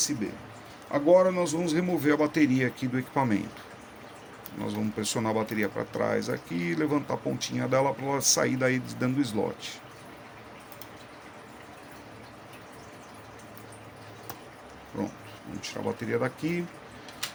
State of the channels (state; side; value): identical; both; correlation 1.00